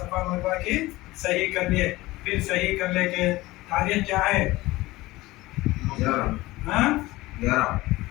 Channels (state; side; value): quieter; right; 19.1 dB